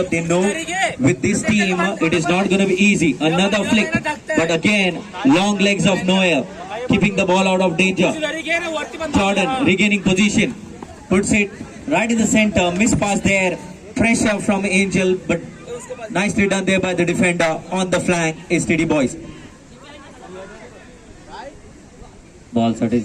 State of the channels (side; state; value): both; identical; correlation 1.00